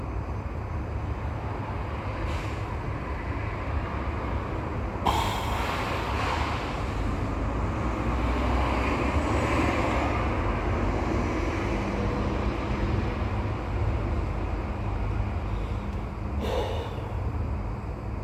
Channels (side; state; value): both; identical; correlation 1.00